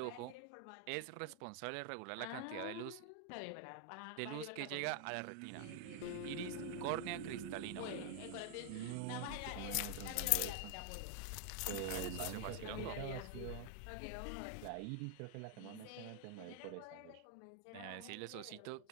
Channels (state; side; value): different; both; correlation 0.00